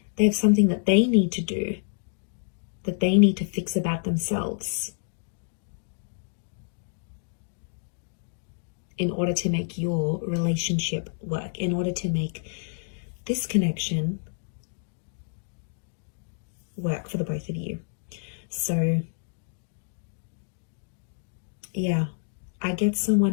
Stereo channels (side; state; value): right; silent; digital silence